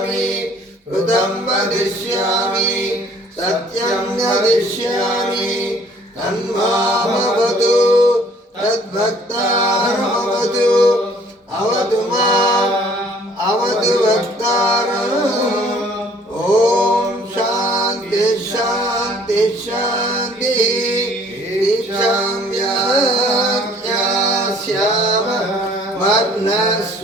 ऋतं वदिष्यामि सत्यं वदिष्यामि तन्मामवतु तद्भक्तारमवतु अवतु माम् अवतु भक्तारम् ॐ शान्ति शान्ति शान्तिः दीक्षां यास्याम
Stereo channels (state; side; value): normal; both; correlation 0.57